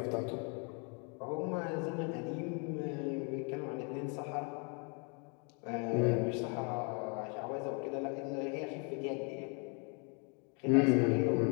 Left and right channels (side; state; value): right; quieter; 36.2 dB